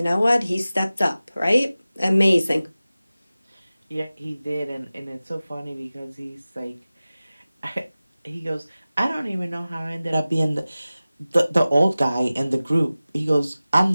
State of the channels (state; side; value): inverted; both; correlation -0.97